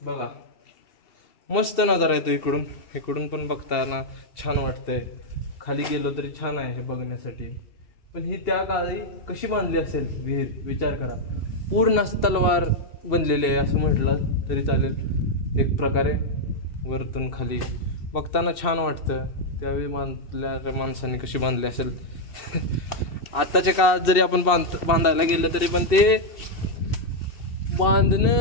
बघा मस्त नजारा येतो. इकडून पण बघताना छान वाटतंय. खाली गेलो तरी छान आहे हे बघण्यासाठी. पण ही त्या काळी कशी बांधली असेल विहीर विचार करा. पूर्ण तलवार बनलेली आहे असं म्हटलं तरी चालेल एक प्रकारे. वरतून खाली बघताना छान वाटतं. त्यावेळी बांधल्या माणसांनी कशी बांधली असेल. आत्ताच्या काळात जरी आपण बांधायला गेलं तरी पण ते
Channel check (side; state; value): right; late; 2.7 ms